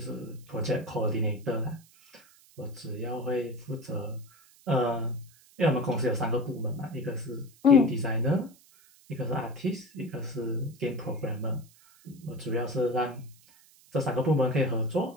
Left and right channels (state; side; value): noise; right; hiss, 27 dB below the sound